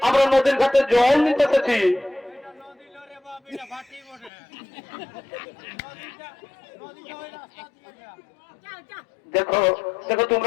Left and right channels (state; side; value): drops out; right; at 4.3 s